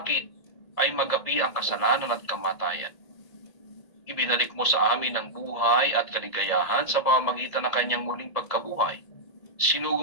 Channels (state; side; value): late; right; 1.8 ms